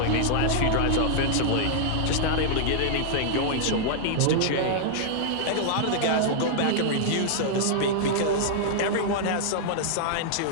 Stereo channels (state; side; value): different; both; correlation -0.01